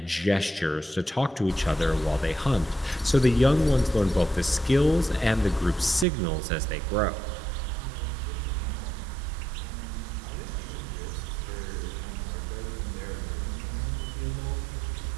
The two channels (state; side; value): drops out; left; at 6.1 s